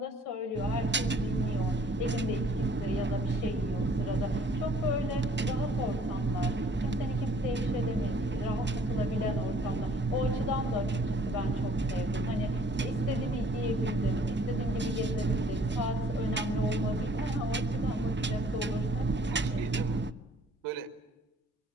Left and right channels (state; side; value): normal; both; correlation 0.58